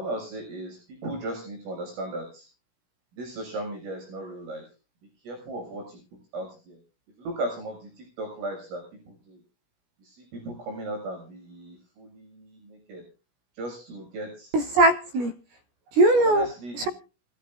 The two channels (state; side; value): late; left; 17 ms